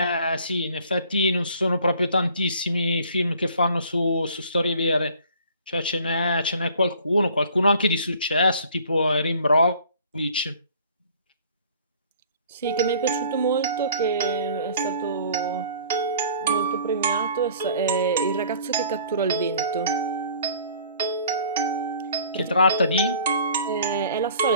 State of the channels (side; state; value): both; inverted; correlation -0.52